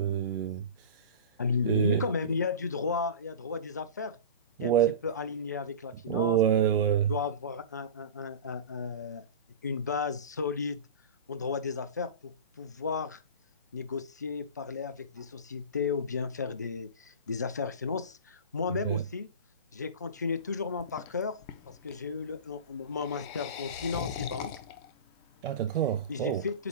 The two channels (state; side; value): inverted; both; correlation -0.31